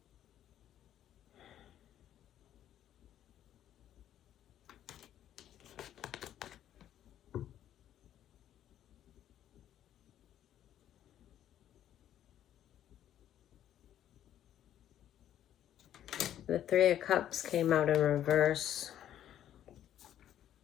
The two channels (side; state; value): right; quieter; 11.2 dB